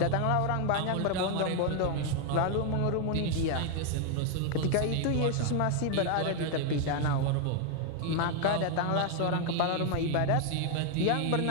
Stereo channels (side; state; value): both; different; correlation 0.00